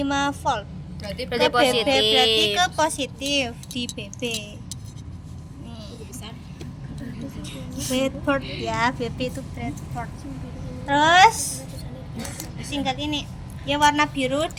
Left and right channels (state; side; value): identical; both; correlation 1.00